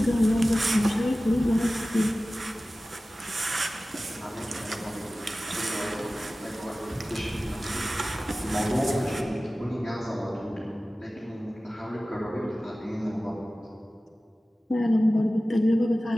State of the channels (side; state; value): both; normal; correlation 0.96